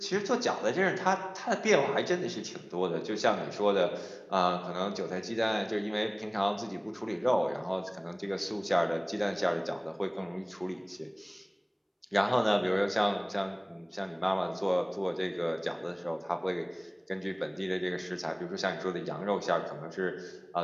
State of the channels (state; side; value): identical; both; correlation 1.00